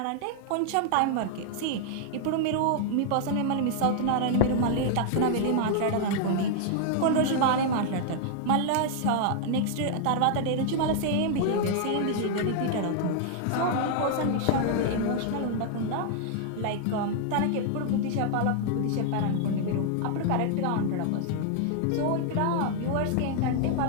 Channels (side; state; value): both; different; correlation 0.00